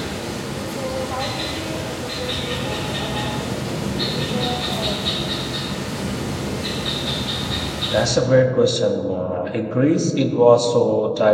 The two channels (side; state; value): both; identical; correlation 1.00